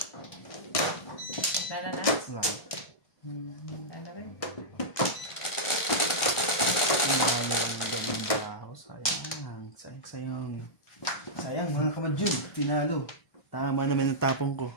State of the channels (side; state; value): right; late; 1.4 ms